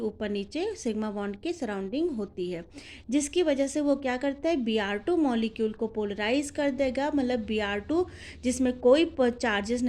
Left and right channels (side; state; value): both; identical; correlation 1.00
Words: नीचे सिग्मा बॉन्ड की सराउंडिंग होती है, जिसकी वजह से वो क्या करता है, Br2 मॉलिक्यूल को पोलराइज कर देगा। मतलब Br2 जिसमें कोई चार्जेस